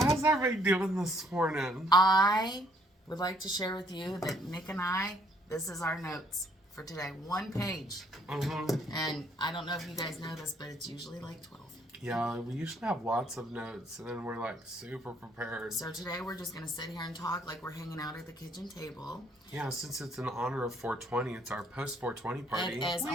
everybody doing this morning? I would like to share with you that Nick and I, this is our notes for today. 1 page. And I don't know if you guys know this, but it's usually like 12. Yeah, we usually have lots of notes, and then we're like super prepared. So today we're just going to sit here and talk like we're hanging out at the kitchen table. Yeah, since it's in honor of 420, it's our post 420 party. It is. Oh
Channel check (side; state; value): both; normal; correlation 0.66